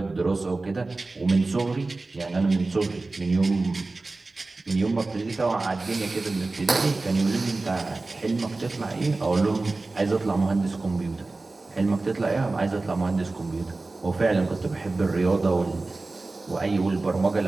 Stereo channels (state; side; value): quieter; left; 3.4 dB